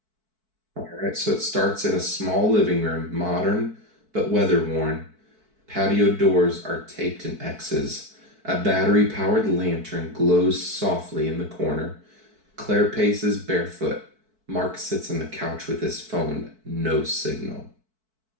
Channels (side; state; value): left; late; 4.6 ms